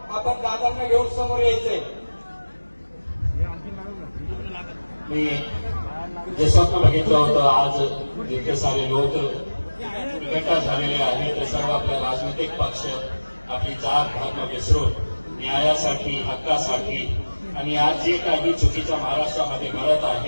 आपण दादांना घेऊन समोर यायचंय। मी जे स्वप्न बघितलं होतं आज जितके सारे लोक एकत्र झालेले आहेत ते सर्व आपल्या राजनैतिक पक्ष आपली जात धर्म विसरून न्यायासाठी हक्कासाठी आणि आज जे काही चुकीच्या महाराष्ट्रामध्ये घडत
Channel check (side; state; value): both; inverted; correlation -1.00